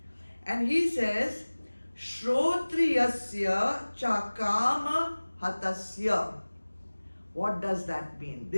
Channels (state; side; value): inverted; both; correlation -1.00